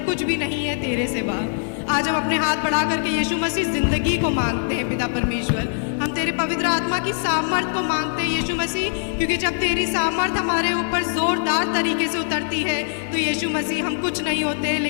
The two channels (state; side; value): silent; right; digital silence